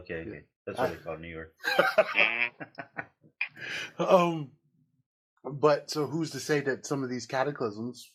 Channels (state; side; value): identical; both; correlation 1.00